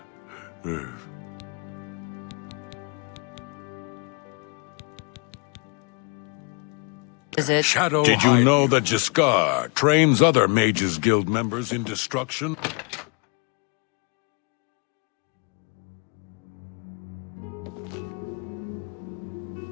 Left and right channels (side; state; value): right; quieter; 36.1 dB